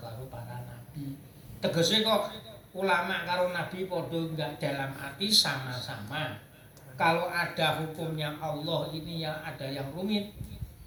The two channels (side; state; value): both; identical; correlation 1.00